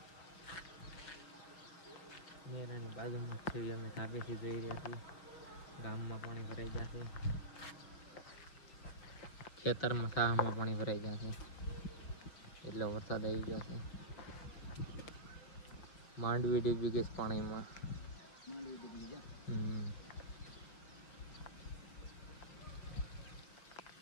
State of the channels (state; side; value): late; right; 5.9 ms